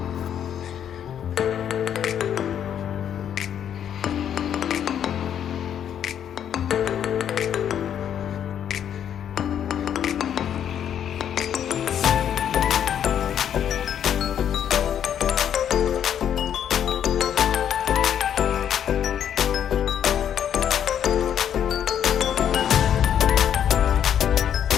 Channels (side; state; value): right; quieter; 9.4 dB